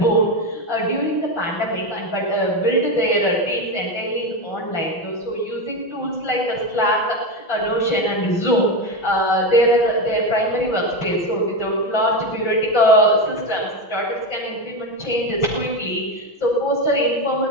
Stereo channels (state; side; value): late; right; 5.9 ms